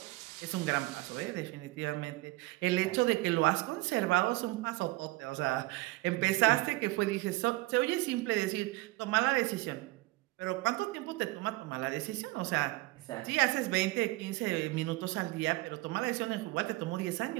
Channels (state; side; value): quieter; left; 20.7 dB